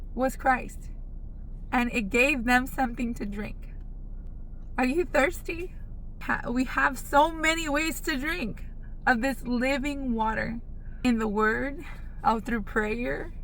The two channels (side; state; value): both; identical; correlation 1.00